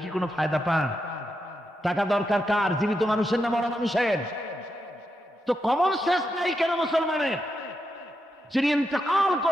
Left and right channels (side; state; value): both; normal; correlation 0.84